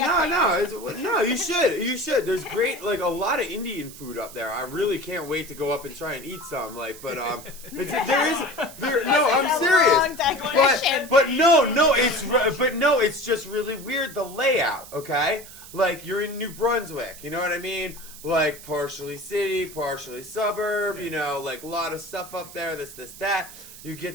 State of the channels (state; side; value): noise; right; hiss, 16 dB below the sound